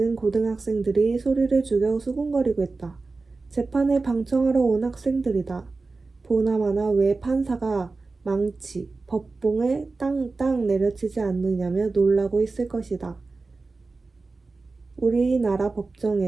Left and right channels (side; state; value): left; quieter; 3.8 dB